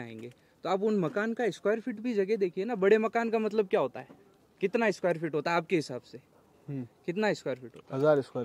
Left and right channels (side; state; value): both; identical; correlation 1.00